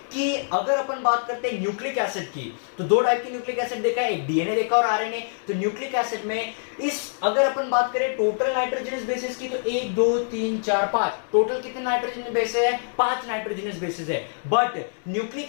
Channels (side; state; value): right; silent; digital silence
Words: कि अगर अपन बात करते हैं न्यूक्लिक एसिड की, तो दो टाइप की न्यूक्लिक एसिड देखा है, एक डीएनए देखा और आरएनए। तो न्यूक्लिक एसिड में अगर अपन बात करें टोटल नाइट्रोजनस बेसिस की, तो 1 2 3 4 5 टोटल कितने नाइट्रोजनस बेसिस है, 5 नाइट्रोजनस बेसिस है। बट